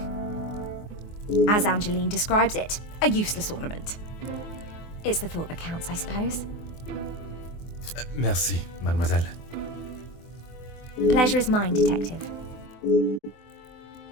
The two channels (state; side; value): late; right; 24 ms